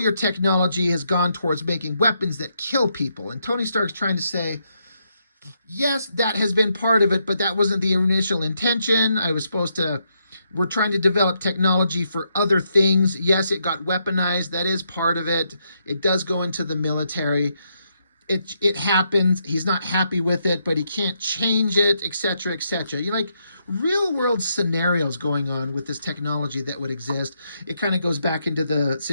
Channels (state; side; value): inverted; both; correlation -0.79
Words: technology has gone towards making weapons that kill people. And Tony Stark's trying to say, yes, that has been part of it, but that wasn't the initial intention. We're trying to develop technology for other things. Yes, it got weaponized. That is part of it. It does go into the military. It happens. He's not happy with it, but he can't change it, etc., etc. Real world scenarios going on with this technology that would exist. It kind of goes back into the